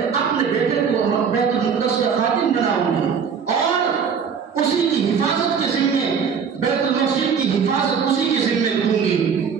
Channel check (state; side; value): quieter; left; 6.6 dB